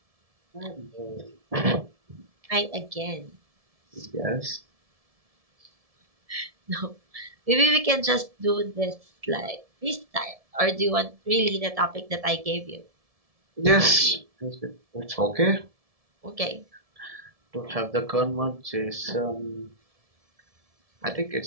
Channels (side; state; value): left; late; 1.7 ms